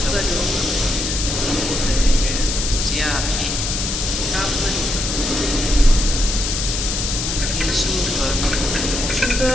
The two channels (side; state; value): left; noise; hiss, 2 dB below the sound